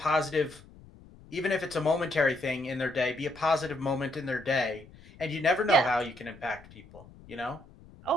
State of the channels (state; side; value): noise; left; rumble, 22 dB below the sound